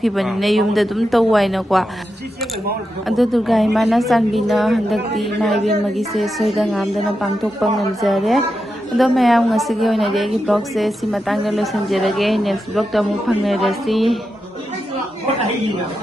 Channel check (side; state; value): both; normal; correlation 0.88